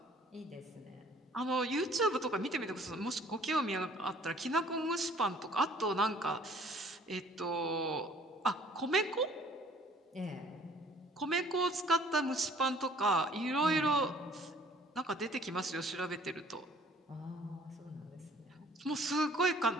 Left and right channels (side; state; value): both; normal; correlation 0.55